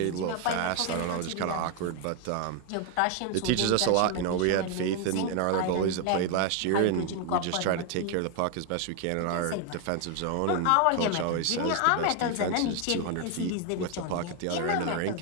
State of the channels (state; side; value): different; both; correlation 0.01